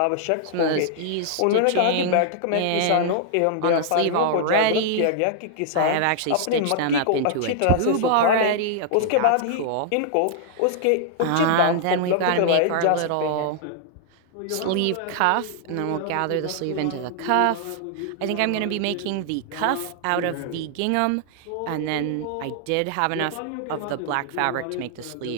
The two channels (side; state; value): both; different; correlation -0.01